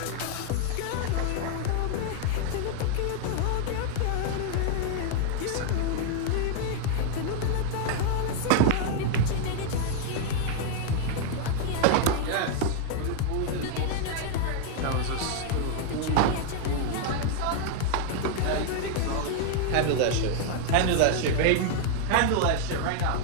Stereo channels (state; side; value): different; both; correlation 0.00